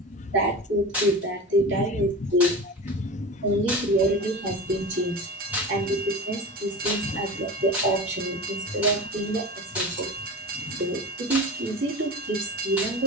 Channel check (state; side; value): normal; both; correlation 0.31